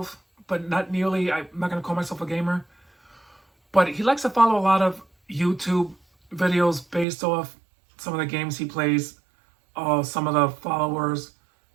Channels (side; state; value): left; drops out; at 7.1 s